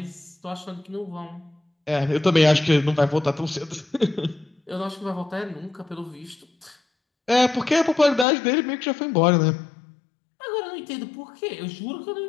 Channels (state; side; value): drops out; right; at 8.2 s